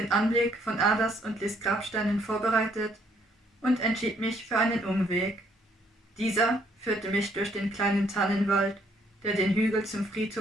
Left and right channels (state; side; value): normal; both; correlation 0.67